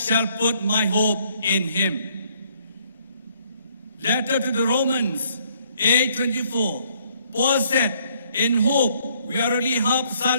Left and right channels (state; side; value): inverted; both; correlation -0.66